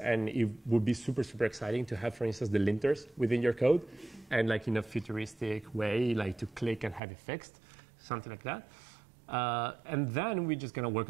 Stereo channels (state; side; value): drops out; left; at 7.0 s